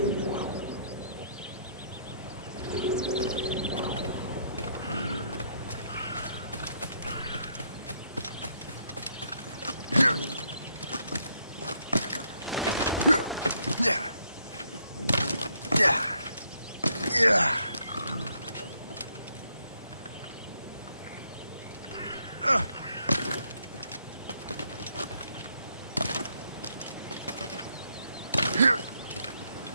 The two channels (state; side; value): inverted; both; correlation -0.72